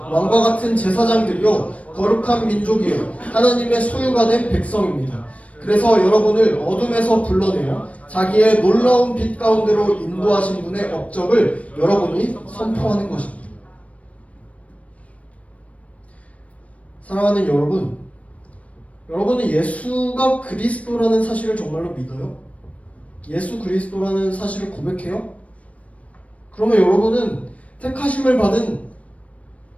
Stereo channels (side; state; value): right; late; 0.066 ms